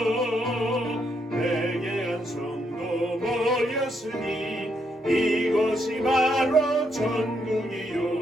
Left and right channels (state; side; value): normal; both; correlation 0.77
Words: 회개한 성도 모였으니 이곳이 바로